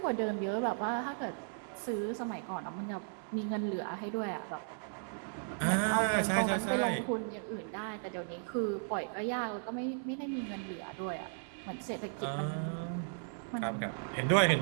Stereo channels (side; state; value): left; silent; 54 dB below the other